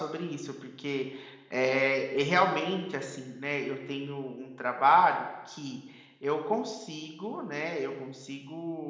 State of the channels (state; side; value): identical; both; correlation 1.00